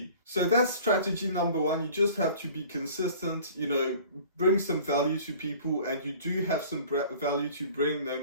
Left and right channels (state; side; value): inverted; both; correlation -0.47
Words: So that's strategy number one. You just have to be consistent, you know, bring some value to people, and you do have some value to bring, no